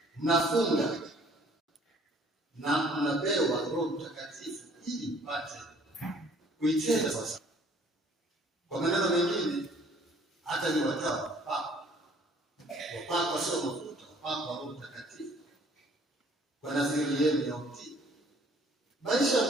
mnafunga na mnapewa Roho Mtakatifu ili mpate kuitenda sasa. Kwa maneno mengine, hata ni watawa wapakwa sio mafuta, wapakwa Roho Mtakatifu kwa nadhiri yenu ya utii. Maisha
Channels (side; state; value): both; normal; correlation 0.57